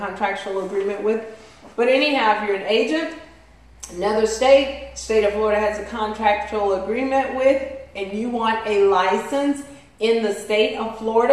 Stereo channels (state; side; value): identical; both; correlation 1.00